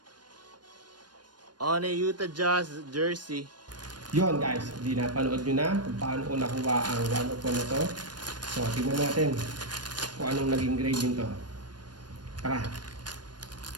On a Utah Jazz jersey. Yon guys, hindi napanood nyo na kung paano ko nakuha ang 101 na to. So, tingnan natin kung anong naging grade nito. Tara!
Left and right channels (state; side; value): late; left; 0.70 ms